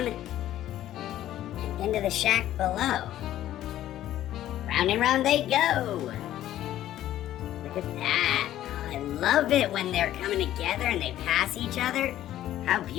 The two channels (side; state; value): right; quieter; 13.0 dB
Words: and into the shack below. Round and round they go. Look at that. Oh, I love it when they're coming together and they pass each other. How